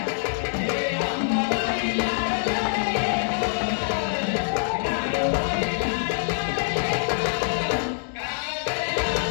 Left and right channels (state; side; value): silent; right; digital silence